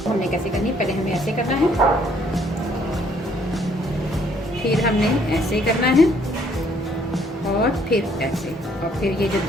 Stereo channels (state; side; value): normal; both; correlation 0.64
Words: हमने कैसे करनी है, पहले हमें ऐसे करना है, फिर हमने ऐसे करना है और फिर ऐसे, और फिर ये जो